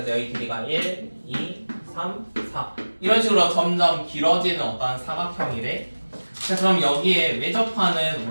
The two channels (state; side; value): inverted; both; correlation -1.00